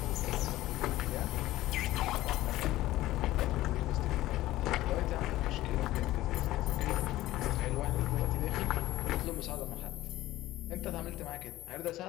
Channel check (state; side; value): quieter; right; 16.2 dB